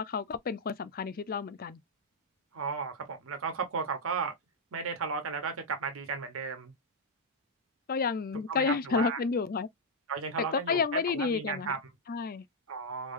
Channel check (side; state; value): both; normal; correlation -0.03